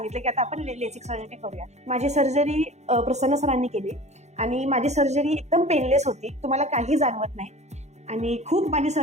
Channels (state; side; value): late; left; 0.33 ms